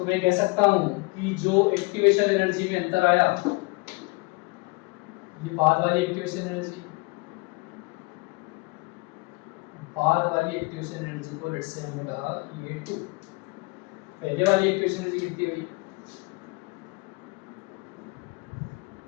मैं कह सकता हूं कि जो एक्टिवेशन एनर्जी में अंतर आया, ये बाद वाली एक्टिवेशन एनर्जी, बाद वाली एक्टिवेशन एनर्जी को लेट्स से हमने कहा ये 2, पहले वाली एक्टिवेशन एनर्जी कितनी हुई,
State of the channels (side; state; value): right; quieter; 27.4 dB